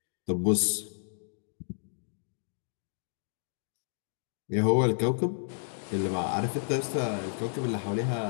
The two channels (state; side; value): silent; right; digital silence